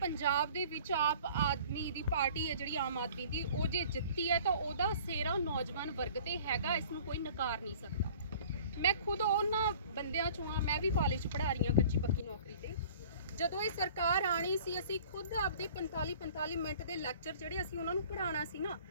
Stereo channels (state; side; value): inverted; both; correlation -0.49